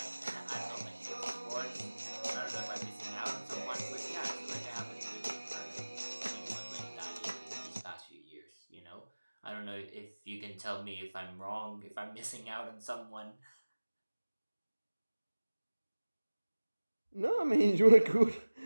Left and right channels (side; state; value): both; inverted; correlation -1.00